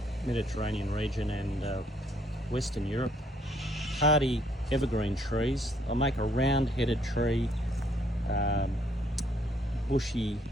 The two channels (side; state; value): both; normal; correlation 0.67